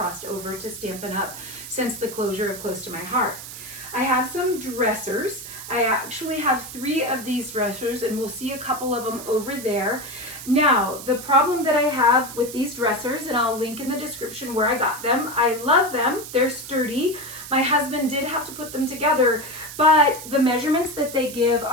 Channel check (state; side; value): noise; right; hiss, 12 dB below the sound